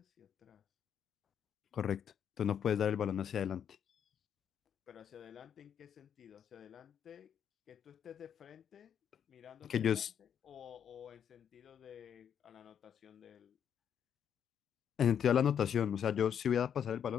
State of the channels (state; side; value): quieter; right; 8.5 dB